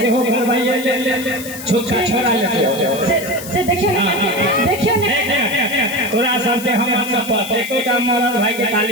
सेहो घर भाई ले छोटका छोरा ले से देखियो ना तोरा सब के हम सब पर एकोटा मरद भाई के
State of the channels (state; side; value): noise; left; hiss, 12 dB below the sound